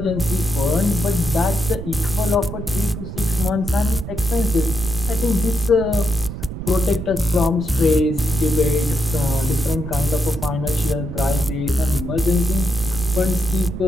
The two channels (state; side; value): noise; right; rumble, 8 dB below the sound